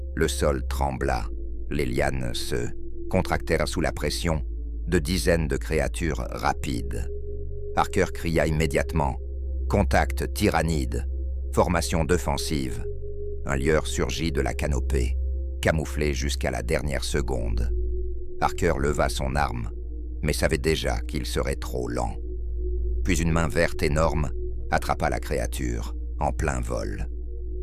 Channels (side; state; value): both; identical; correlation 1.00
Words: Le sol trembla. Les lianes se contractèrent sous la pression de dizaines de créatures rapides. Harker cria immédiatement « Contact tyrannide, formation défensive ». Un lieur surgit de la canopée, camouflé jusqu'à la dernière seconde. Harker leva son arme, mais savait déjà qu'il serait trop lent. Puis une main verte énorme attrapa la créature, en plein vol.